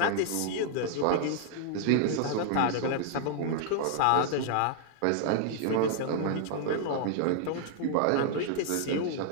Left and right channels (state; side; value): different; both; correlation -0.01